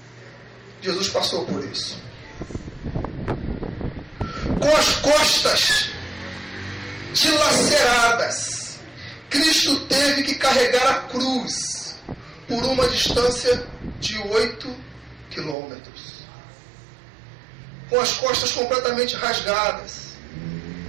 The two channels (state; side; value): drops out; left; at 15.6 s